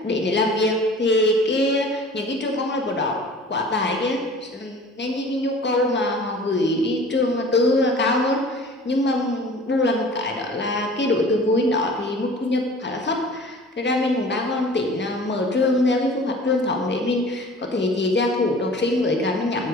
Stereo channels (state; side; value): normal; both; correlation 0.45